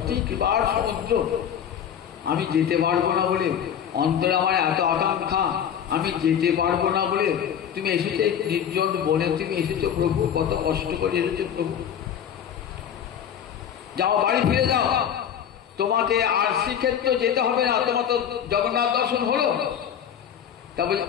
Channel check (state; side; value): quieter; right; 8.9 dB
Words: কৃপার সমুদ্র। আমি যেতে পারবো না বলে, অন্তরে আমার এত আকাঙ্ক্ষা, আমি যেতে পারবো না বলে তুমি এসেছো নির্জন বনে, তুমি এসেছো প্রভু, কত কষ্ট করে এসেছো প্রভু। যাও, বাড়ি ফিরে যাও, তোমাকে আর শ্রীক্ষেত্র যেতে হবে না, তোমার তো জগন্নাথ দর্শন হলো। তা বলে